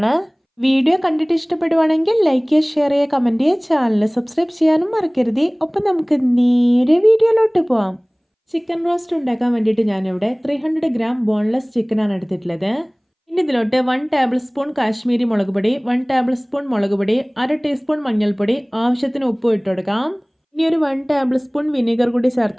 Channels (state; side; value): identical; both; correlation 1.00